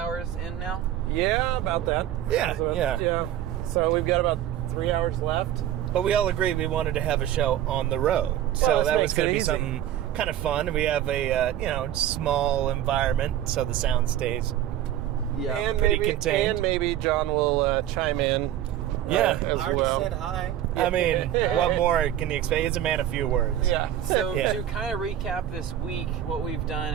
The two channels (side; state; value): left; quieter; 11.7 dB